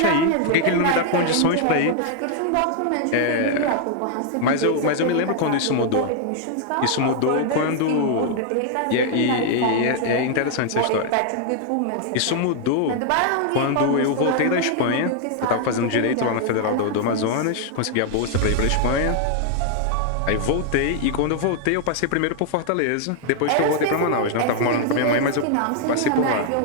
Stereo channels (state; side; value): different; both; correlation 0.00